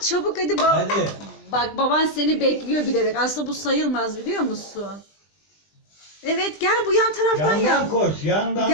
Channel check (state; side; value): late; right; 20 ms